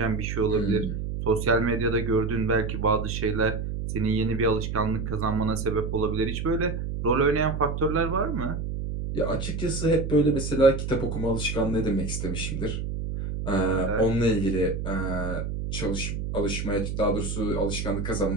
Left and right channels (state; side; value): noise; right; hum, 4 dB below the sound